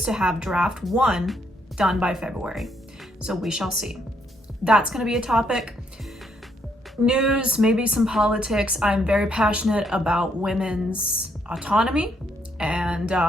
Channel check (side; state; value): both; normal; correlation 0.73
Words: to have draft 1 done by February. So we shall see. That's going to be a topic. news, maybe some politics. I'm very passionate about women's autonomy, and